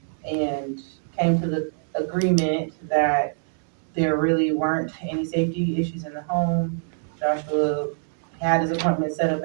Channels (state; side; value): silent; left; digital silence